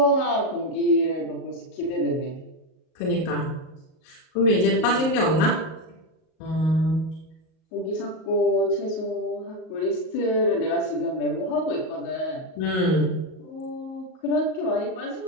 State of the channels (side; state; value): right; late; 38 ms